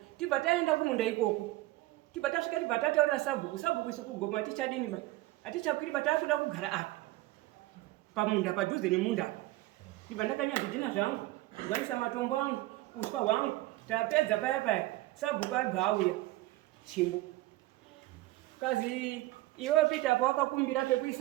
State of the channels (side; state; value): left; quieter; 18.4 dB